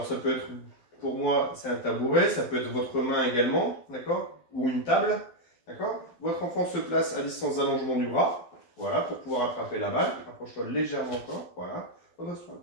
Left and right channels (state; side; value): late; right; 12 ms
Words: ça peut être, pour moi, c'est un tabouret, ça peut être votre main également, d'accord? Ou une table, d'accord? Votre enfant se place à distance d'allongement du bras. voilà, pour pouvoir attraper la balle. Rapproche-toi légèrement encore, voilà. Redresse-toi un